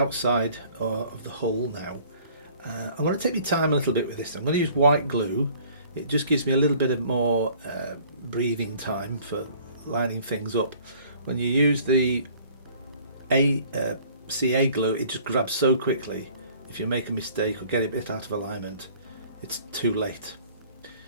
of the hull now. I'm going to take my time a little bit with this. I'm going to use white glue. It just gives me a little bit of more breathing time for lining things up. When you use the CA glue, it just grabs so quickly. If you make a mistake or get it a bit out of alignment, it's too late.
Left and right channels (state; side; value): inverted; both; correlation -0.54